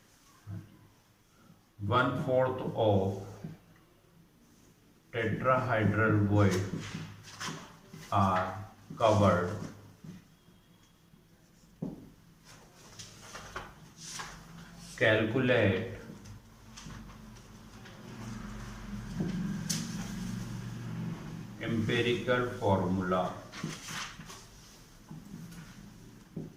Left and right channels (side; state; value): both; identical; correlation 1.00